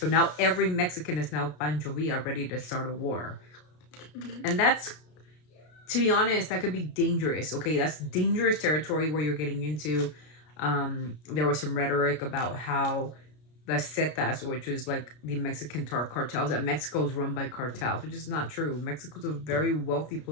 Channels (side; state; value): right; late; 33 ms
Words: now every Mexican is now Pancho Villa, ready to start a war. And that's, to be honest, that could be dangerous. Okay, that's dangerous territory where you're getting into. There was some rhetoric about how the Zetas, which is like the Mexican cartels, that Mexico is run by cartels, which is not true. Mexico's a very wealthy